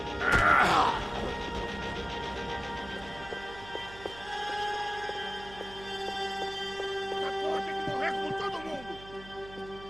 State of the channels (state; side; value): noise; right; hum, 17 dB below the sound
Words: Porra, tem que morrer com todo mundo!